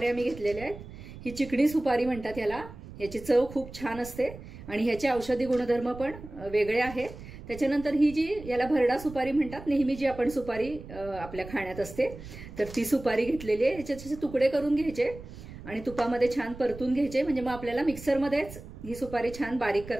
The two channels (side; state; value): right; noise; rumble, 14 dB below the sound